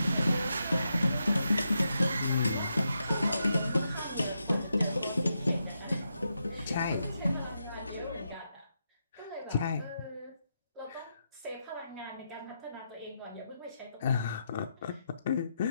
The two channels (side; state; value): both; inverted; correlation -0.84